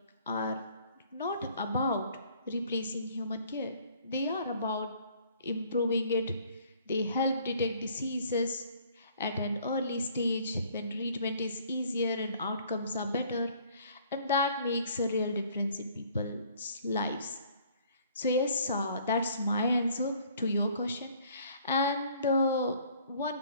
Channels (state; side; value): inverted; both; correlation -0.58